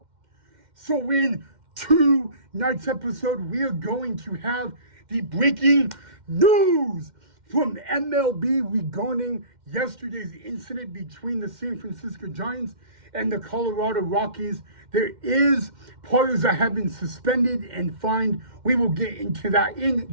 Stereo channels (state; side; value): late; left; 2.1 ms